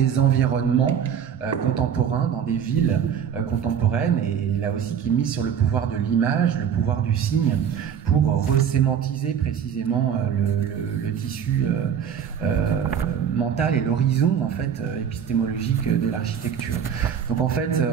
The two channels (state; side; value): quieter; left; 8.2 dB